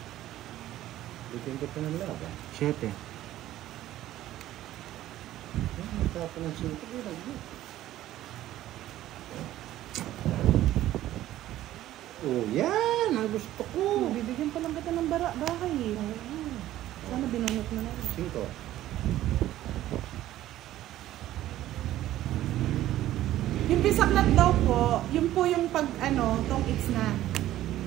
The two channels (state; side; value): quieter; left; 14.0 dB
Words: Bitin ko pa ng laban. 7. Nagtapon ng sinto. Oh, yan! Ang ang gusto ko. Bibigyan pa lang kita ng bahay eh. Sana binunot mo na rin. 5. Yung bisaklat daw po, yun po yung pag tong it's na.